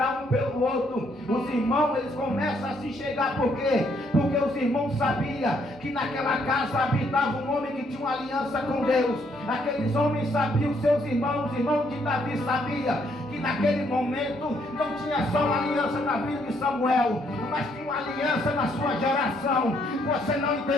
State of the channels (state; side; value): normal; both; correlation 0.70